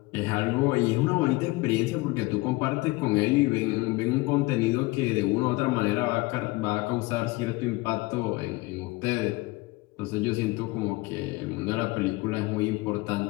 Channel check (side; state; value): right; quieter; 22.3 dB